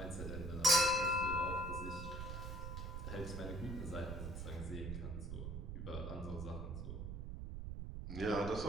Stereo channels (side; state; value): right; noise; rumble, 5 dB below the sound